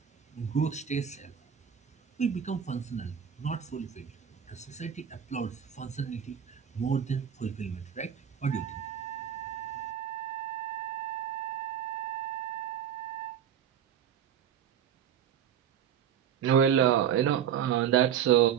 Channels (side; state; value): left; quieter; 8.8 dB